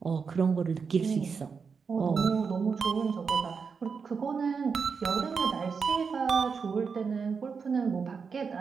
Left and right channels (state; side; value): quieter; left; 5.6 dB